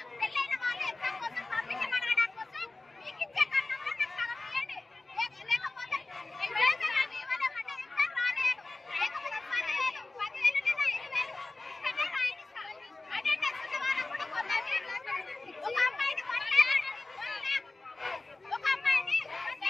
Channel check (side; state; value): right; quieter; 3.2 dB